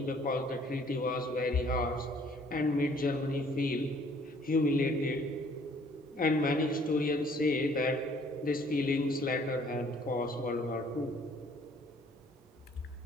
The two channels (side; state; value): both; normal; correlation 0.59